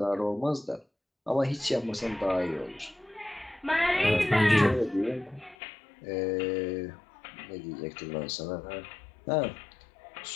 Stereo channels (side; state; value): right; drops out; at 5.6 s